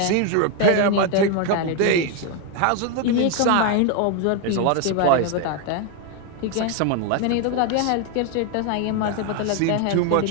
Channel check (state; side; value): different; both; correlation 0.01